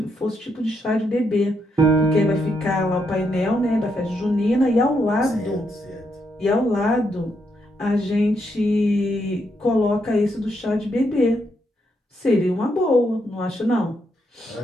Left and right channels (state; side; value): normal; both; correlation 0.78